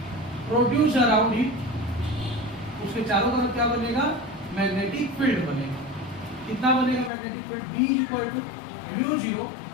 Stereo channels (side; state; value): right; drops out; at 7.1 s